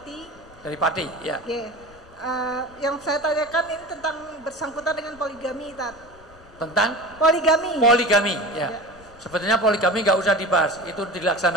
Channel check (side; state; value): left; noise; rumble, 24 dB below the sound